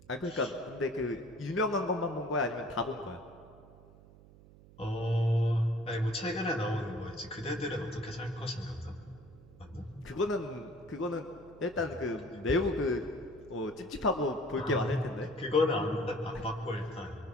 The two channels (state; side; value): noise; right; hum, 22 dB below the sound